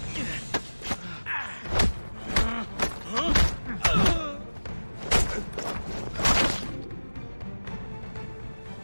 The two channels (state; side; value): inverted; both; correlation -1.00